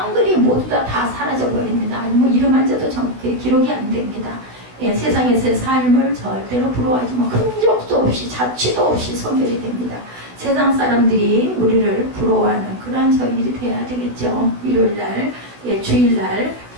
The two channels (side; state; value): left; late; 16 ms